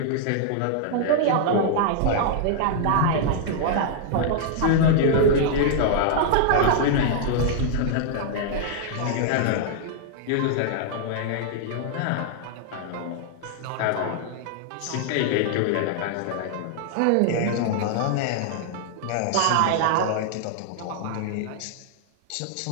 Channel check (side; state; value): both; different; correlation -0.01